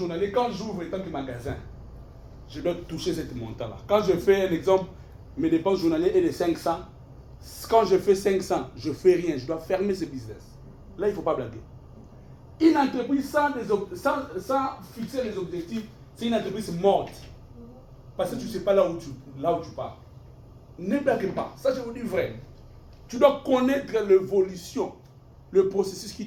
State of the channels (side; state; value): both; identical; correlation 1.00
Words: quand j'ouvre étant que magasin, je dois toucher ce montant-là. Quand je fais un exemple, mes dépenses journalières est de 500. Quand je fais 500, je ne fais rien. Je dois fermer ce business. Là, il ne faut pas blaguer. Une entreprise sans fixer les objectifs, c'est une entreprise morte. Parce que tu ne sais pas là où tu pars. Ne blague pas. Ça, je vous dis vrai. Tu dois connaître l'évolution, le processus